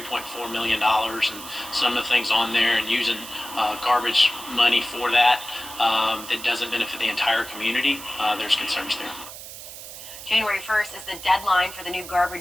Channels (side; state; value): right; noise; hiss, 13 dB below the sound